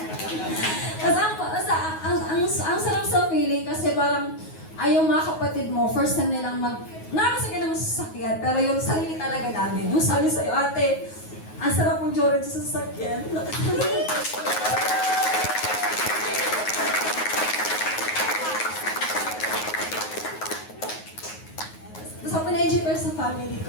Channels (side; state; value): right; late; 9.4 ms